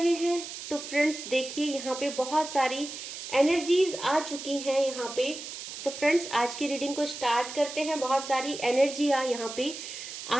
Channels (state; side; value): noise; right; hiss, 9 dB below the sound